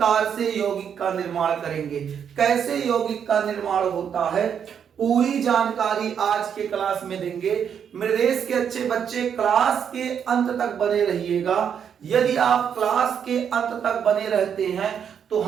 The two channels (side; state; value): left; quieter; 7.9 dB